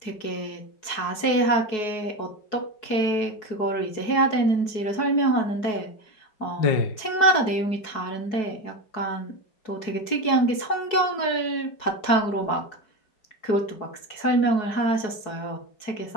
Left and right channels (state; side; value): late; right; 4.7 ms